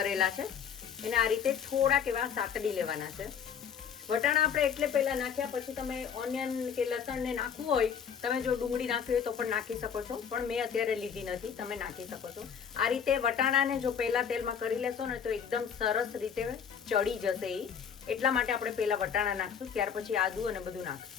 છે. એને આ રીતે થોડાક એવા સાતડી લેવાના છે. વટાણા આપણે એટલે પહેલા નાખ્યા, પછી તમે ઓનિયન કે લસણને નાખવું હોય, તમે જો ડુંગળી નાખવી હોય તો પણ નાખી શકો છો, પણ મેં અત્યારે લીધી નથી, તમે નાખી શકો છો. આ રીતે વટાણાને જો પહેલા તેલમાં કરી લેશો ને, તો એકદમ સરસ રીતે ચડી જશે. એટલા માટે આપણે પહેલા વટાણા નાખશું, ત્યાર પછી આદુ અને બધું નાખશું.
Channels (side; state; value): right; quieter; 7.5 dB